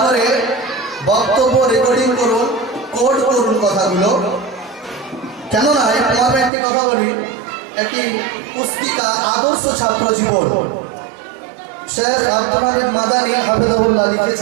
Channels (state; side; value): drops out; left; at 6.5 s